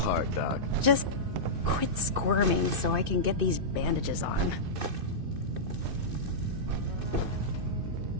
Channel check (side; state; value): left; late; 2.6 ms